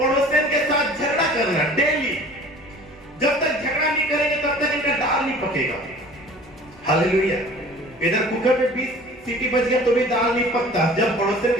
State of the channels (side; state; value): both; normal; correlation 0.46